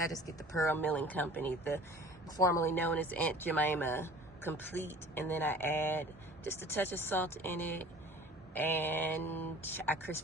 just get the Pearl Milling Company, the formerly known as Aunt Jemima Complete, and then I add just a touch of salt in it, and I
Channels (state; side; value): normal; both; correlation 0.45